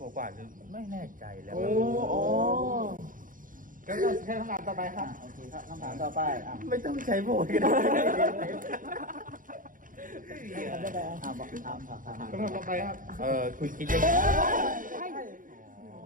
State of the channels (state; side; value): late; left; 0.39 ms